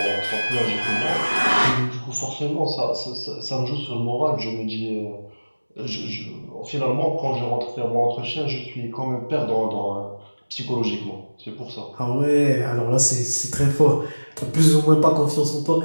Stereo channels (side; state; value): both; inverted; correlation -1.00